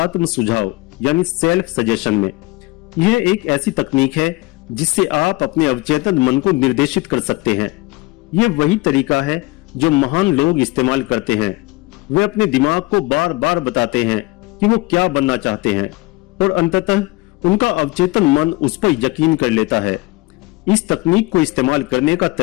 सुझाव यानी सेल्फ सजेशन में। यह एक ऐसी तकनीक है जिससे आप अपने अवचेतन मन को निर्देशित कर सकते हैं। यह वही तरीका है जो महान लोग इस्तेमाल करते हैं। वे अपने दिमाग को बार बार बताते हैं कि वो क्या बनना चाहते हैं, और अंततः उनका अवचेतन मन उस पर यकीन कर लेता है। इस तकनीक को इस्तेमाल करने का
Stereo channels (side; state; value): right; quieter; 21.9 dB